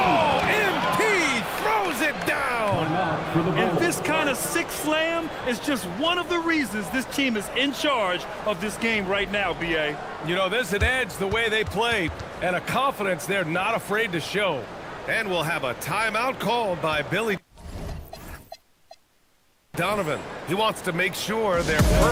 MP throws it down. And this kind of sick slam is just one of the reasons this team is in charge of this game right now, B.A. You know, there's an edge the way they play and a confidence they're not afraid to show. And we'll have a timeout called by Billy Donovan. He wants to make sure they're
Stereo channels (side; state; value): both; identical; correlation 1.00